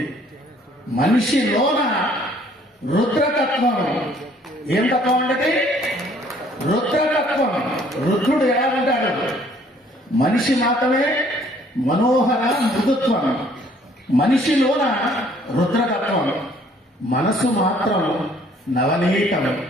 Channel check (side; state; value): both; normal; correlation 0.60